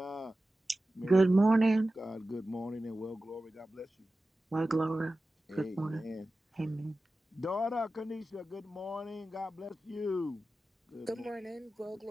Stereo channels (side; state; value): both; normal; correlation 0.95